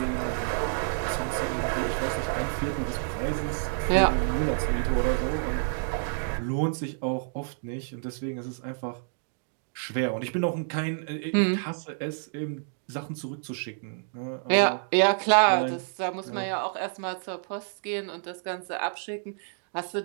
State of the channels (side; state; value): left; silent; digital silence